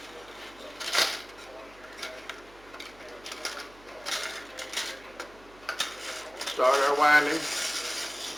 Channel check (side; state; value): right; noise; hum, 24 dB below the sound